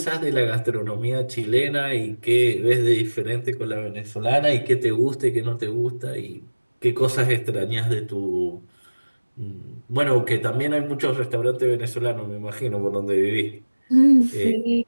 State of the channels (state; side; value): inverted; both; correlation -1.00